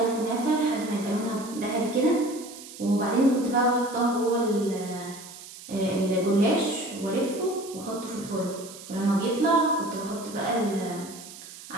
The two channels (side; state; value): right; noise; hiss, 15 dB below the sound